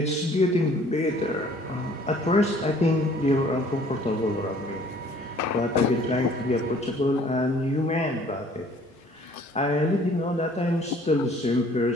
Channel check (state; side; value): normal; both; correlation 0.56